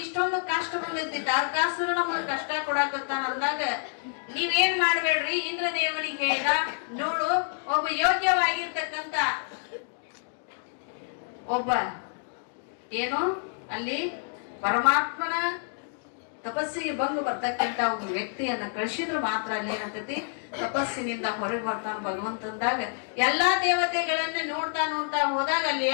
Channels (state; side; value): silent; right; 55 dB below the other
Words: ಇಷ್ಟೊಂದು ಕಷ್ಟ ಬಂದೈತಿ, ತಾರಕಾಸುರ ನಮಗ್ ಕಷ್ಟ ಕೊಡಾಕತ್ತಾನ ಅಂದಾಗ ನೀವೇನ್ ಮಾಡ್ಬೇಡ್ರಿ, ಇಂದ್ರ ದೇವನಿಗೆ ಹೇಳಿದ, ನೋಡು ಒಬ್ಬ ಯೋಗ್ಯವಾಗಿರ್ತಕ್ಕಂತ ಒಬ್ಬ ಏನು ಅಲ್ಲಿ ಪರಮಾತ್ಮನ ತಪಸ್ಸಿಗೆ ಭಂಗ ಬರ್ತಕ್ಕಂತ ಒಬ್ಬ ವ್ಯಕ್ತಿಯನ್ನ ಕಳಿಸಿದ್ರು ಮಾತ್ರ ಅಲ್ಲಿ ಏನಂತತಿ ತಪಸ್ಸಿನಿಂದ ಹೊರಗೆ ಬರ್ತಾನ ಭಗವಂತಂದಾಗ. ಎಲ್ಲಾ ದೇವತೆಗಳನ್ನ ನೋಡ್ತಾ ನೋಡ್ತಾ ಹೋದಾಗ ಅಲ್ಲಿ